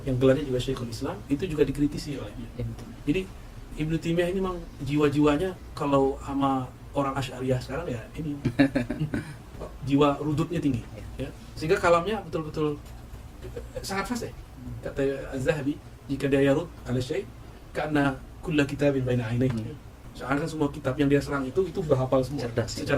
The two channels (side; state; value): both; identical; correlation 1.00